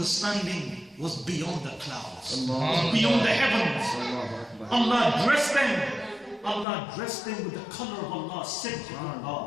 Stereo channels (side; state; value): right; drops out; at 6.7 s